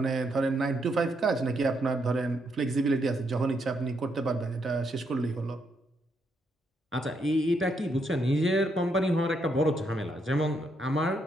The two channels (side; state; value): both; normal; correlation 0.77